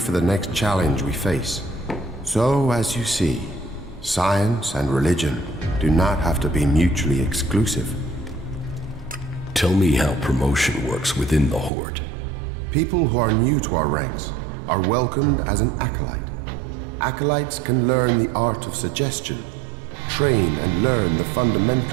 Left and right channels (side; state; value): left; drops out; at 11.7 s